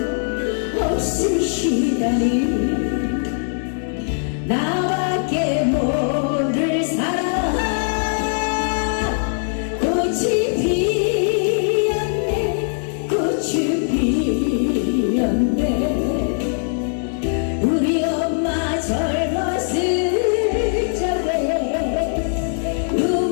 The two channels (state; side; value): silent; right; digital silence